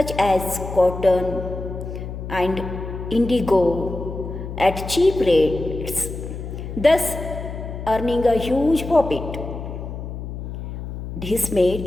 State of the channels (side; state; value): left; noise; hum, 8 dB below the sound